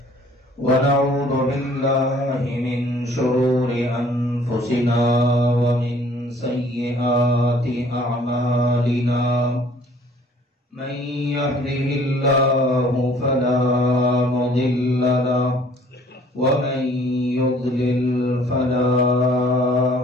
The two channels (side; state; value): both; normal; correlation 0.55